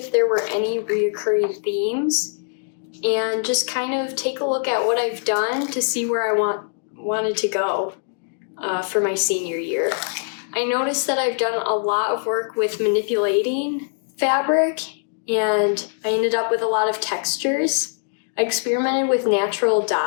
there were any reoccurring themes and just kind of take a look at what I've done to see where I wanted to go for my senior year. I noticed that I've done a lot of work with manipulating fabric, and I ended up with a lot of textures. I experimented with natural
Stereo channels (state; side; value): silent; right; digital silence